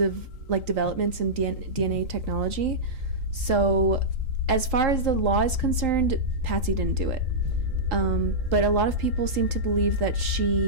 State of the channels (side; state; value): left; late; 3.8 ms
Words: like developments in DNA technology. So as far as the law is concerned, Patsy didn't do it. But a lot of people seem to believe that